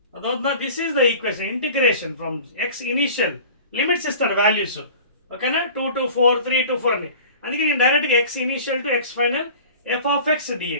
Adotna, this is the equation. Integration from x initial limits is the values. Okay na? 2 to 4, 3 to 4 ani. అందుకే నేను డైరెక్ట్గా x initial to x final f of X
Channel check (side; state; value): both; inverted; correlation -0.42